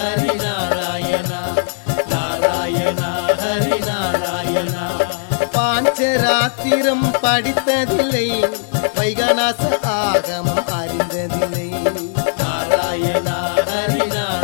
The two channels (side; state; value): right; silent; 55 dB below the other